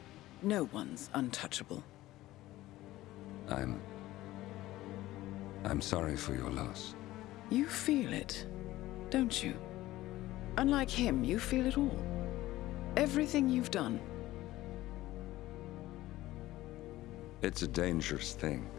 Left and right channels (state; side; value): quieter; right; 16.4 dB